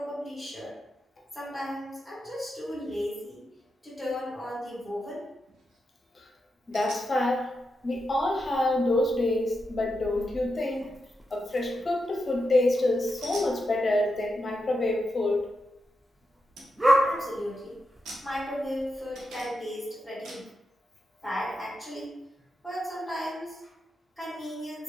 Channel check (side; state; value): both; normal; correlation 0.86